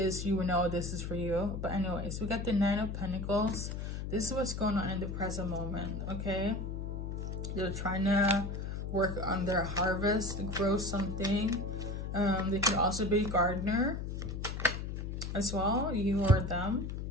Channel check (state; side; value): noise; left; hum, 5 dB below the sound